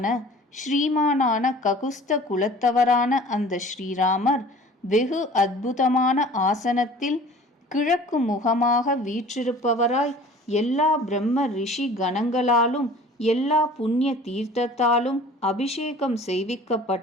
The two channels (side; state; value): both; normal; correlation 0.46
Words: ஸ்ரீமானான ககுஸ்த குலத்தவரான அந்த ஸ்ரீராமர் வெகு அற்புதமான ஆசனத்தில் கிழக்கு முகமாக வீற்றிருப்பவராய் எல்லா பிரம்ம ரிஷி கணங்களாலும் எல்லா புண்ணிய தீர்த்தத்தாலும் அபிஷேகம்